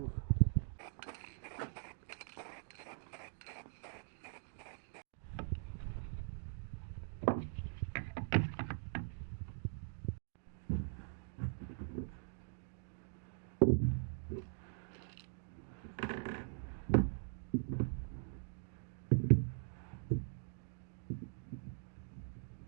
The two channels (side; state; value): left; silent; digital silence